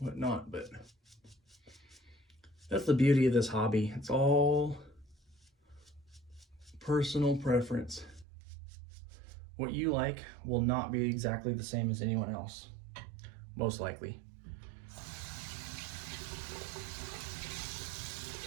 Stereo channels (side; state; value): left; drops out; at 8.2 s